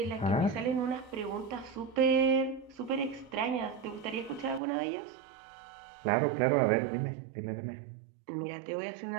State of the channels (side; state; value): left; drops out; at 4.6 s